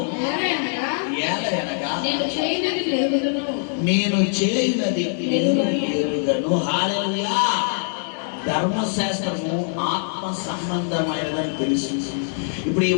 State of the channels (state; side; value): silent; right; 62 dB below the other